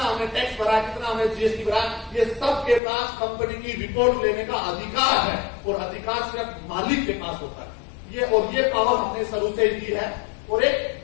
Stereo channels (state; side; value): drops out; right; at 2.8 s